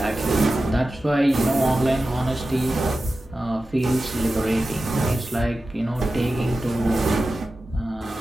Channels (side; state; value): both; normal; correlation 0.93